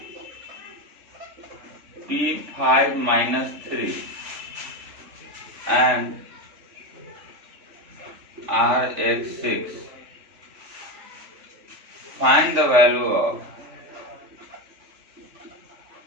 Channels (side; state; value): left; late; 3.5 ms